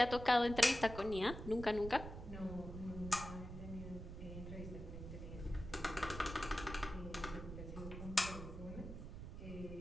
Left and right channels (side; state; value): right; noise; rumble, 9 dB below the sound